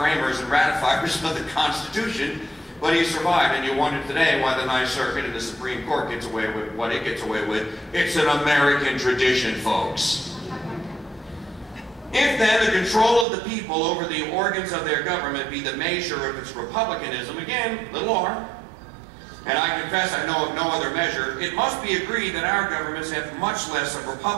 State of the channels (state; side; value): drops out; left; at 13.2 s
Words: and ratifiers of the Constitution, but he survived. And you wonder today why the Ninth Circuit and the Supreme Court gets away with what it gets away with. It's an American tradition, folks. If then the control of the people over the organs of their government be the measure of its republicanism, again, little r, and I confess I know of no other measure, it must be agreed that our governments have much less of